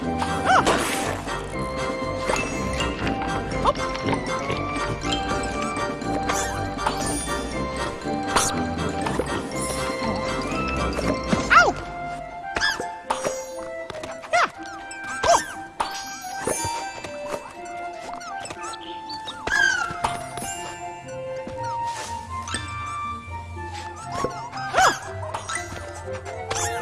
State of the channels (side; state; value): both; identical; correlation 1.00